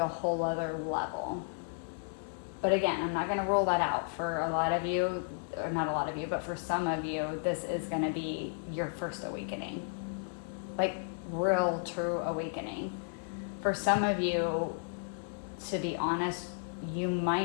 a whole other level. But again, I'm not going to rule that out. For a lot of you, or not a lot of you, but for some of you, this is going to be your first awakening. Like real, true awakening. For some of you, to be honest, you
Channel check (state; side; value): silent; right; digital silence